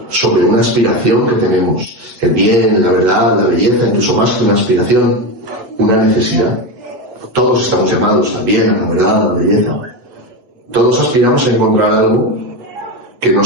sobre una aspiración que tenemos. El bien, la verdad, la belleza, incluso más que una aspiración, una necesidad. Todos estamos llamados al bien, a la verdad, a la belleza. Todos aspiramos a encontrar algo que no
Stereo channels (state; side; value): late; left; 8.1 ms